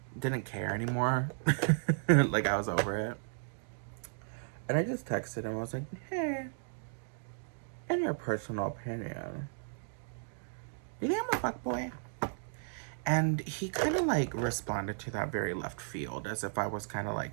didn't care anymore. Like, I was over it. And I just texted him. I was like, hey, in your personal opinion, do you think I'm a fuckboy? And he kind of like responded to that very left field, as if I was kind of like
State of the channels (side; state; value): left; silent; digital silence